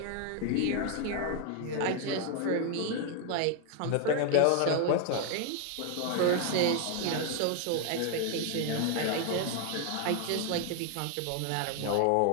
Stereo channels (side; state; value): both; different; correlation 0.01